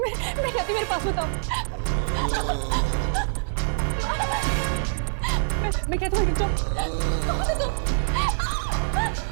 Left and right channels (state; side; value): silent; left; digital silence